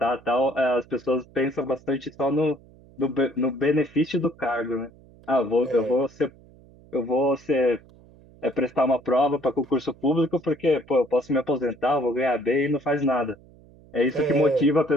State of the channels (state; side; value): noise; right; hum, 25 dB below the sound